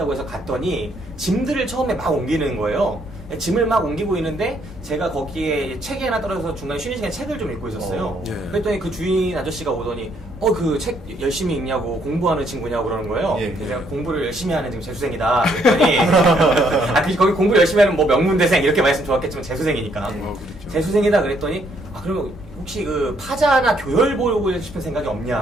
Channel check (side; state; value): both; normal; correlation 0.70